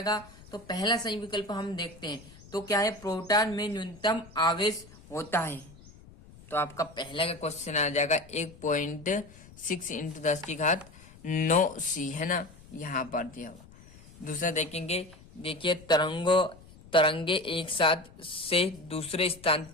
तो पहला सही विकल्प हम देखते हैं। तो क्या है, प्रोटॉन में न्यूनतम आवेश होता है। तो आपका पहला का क्वेश्चन आ जाएगा 1.6 इंटू 10⁻⁹ है ना, यहाँ पर दिया हुआ। दूसरा देखेंगे, देखिए तरंगे एक साथ से दूसरे स्थान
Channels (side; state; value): left; noise; rumble, 21 dB below the sound